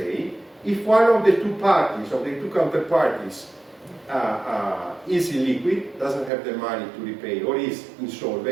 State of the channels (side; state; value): left; drops out; at 6.3 s